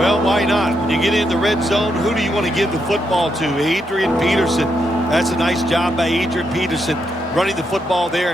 why not? When you get in the red zone, who do you want to give the football to? Adrian Peterson. That's a nice job by Adrian Peterson, running the football there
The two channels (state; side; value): normal; both; correlation 0.80